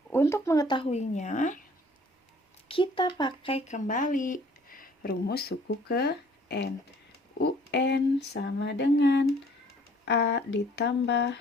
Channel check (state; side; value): normal; both; correlation 0.56